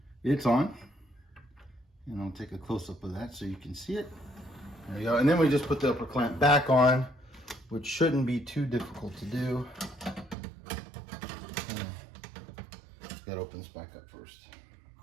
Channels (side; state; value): left; drops out; at 10.4 s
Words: it's on. And I'll take a close-up of that so you can see it. There you go. And then we just put the upper clamp back on, which shouldn't be too difficult to do. Got to open this back up first.